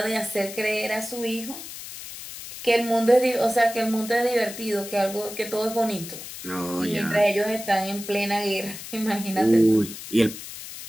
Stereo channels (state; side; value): noise; left; hiss, 11 dB below the sound